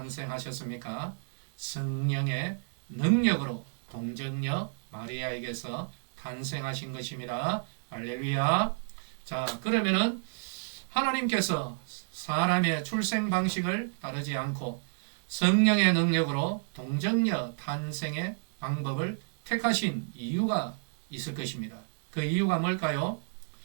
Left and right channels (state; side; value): silent; left; digital silence